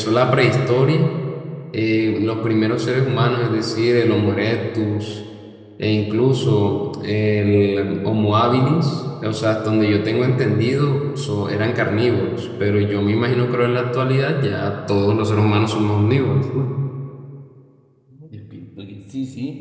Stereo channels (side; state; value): both; identical; correlation 1.00